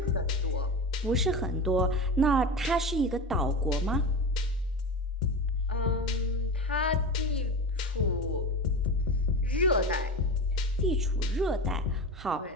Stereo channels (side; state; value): both; normal; correlation 0.26